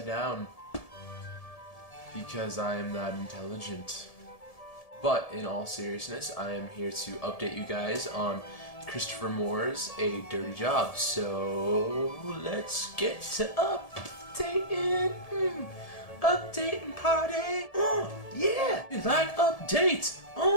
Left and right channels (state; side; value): late; right; 1.7 ms